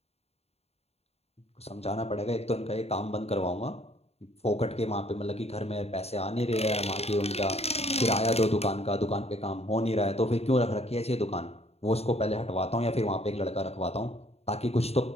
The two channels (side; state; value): right; late; 0.30 ms